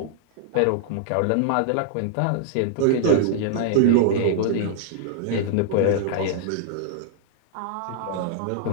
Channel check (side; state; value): both; different; correlation -0.01